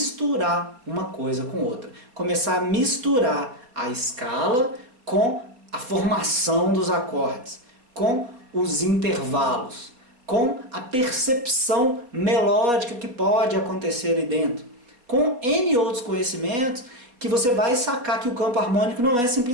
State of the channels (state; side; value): late; left; 4.1 ms